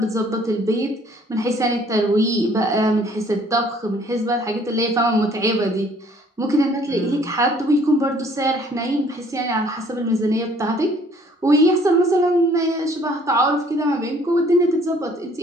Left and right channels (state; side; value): normal; both; correlation 0.59